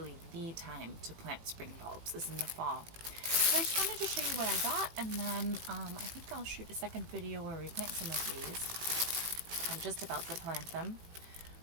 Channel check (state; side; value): late; left; 18 ms